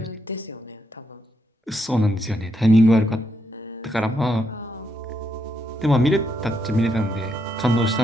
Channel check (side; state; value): both; normal; correlation 0.79